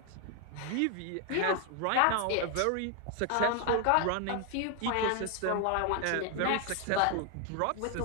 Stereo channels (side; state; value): both; different; correlation 0.00